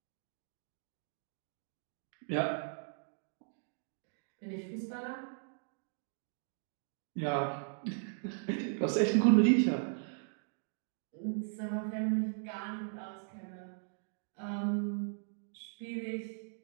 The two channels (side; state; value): left; silent; digital silence